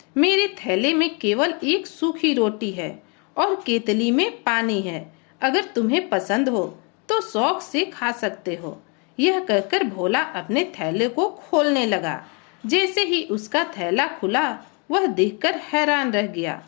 मेरे थैले में केवल एक सूखी रोटी है और केतली में पानी है। अगर तुम्हें पसंद हो तो शौक से खा सकते हो। यह कहकर भोला अपने थैले को खोलने लगा। जैसे ही उसका थैला खुला, वह देखकर हैरान रह गया।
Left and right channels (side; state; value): right; quieter; 34.4 dB